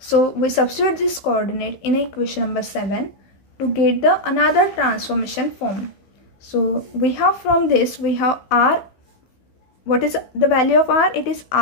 we substitute this coordinate in equation number 7 to get the another transformation form. So we have from this, we have r, what is the value of r? It is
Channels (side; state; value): right; late; 15 ms